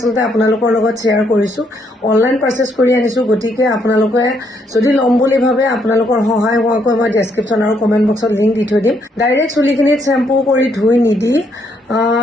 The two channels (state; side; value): normal; both; correlation 0.73